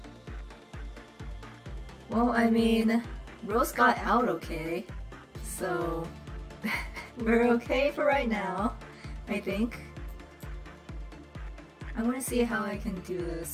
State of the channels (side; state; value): both; identical; correlation 1.00